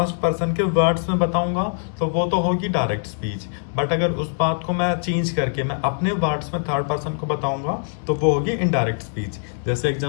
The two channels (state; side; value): silent; right; 64 dB below the other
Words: पर्सन के वर्ड्स में बताऊंगा, तो वो तो होगी डायरेक्ट स्पीच। बट अगर उस बात को मैं चेंज करके मैं अपने वर्ड्स में थर्ड पर्सन को बताऊंगा, तो वो होगी इनडायरेक्ट स्पीच। जैसे